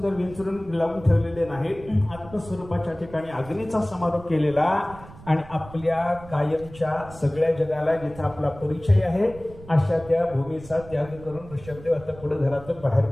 विंचरून लावून ठेवलेले नाही, आत्मस्वरूपाच्या ठिकाणी अग्नीचा समारोप केलेला. आणि आपल्या कायमच्या सगळ्या जगाला जिथे आपला परिचय आहे अशा त्या भूमीचा त्याग करून ऋषभदेव आता पुढे घरातून बाहेर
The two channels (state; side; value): noise; right; rumble, 18 dB below the sound